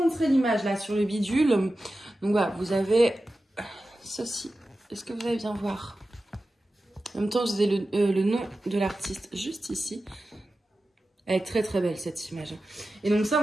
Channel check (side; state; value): both; normal; correlation 0.93